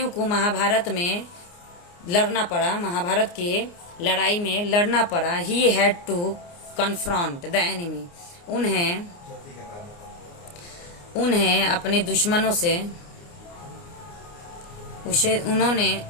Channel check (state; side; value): late; right; 29 ms